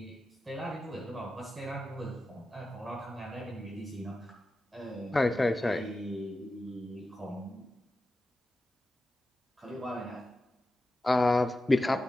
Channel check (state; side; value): normal; both; correlation 0.92